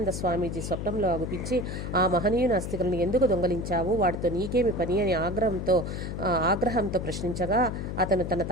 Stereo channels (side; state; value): left; noise; hum, 5 dB below the sound